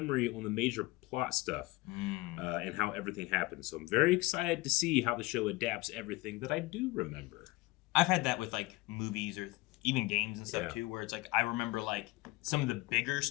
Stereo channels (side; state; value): right; quieter; 21.1 dB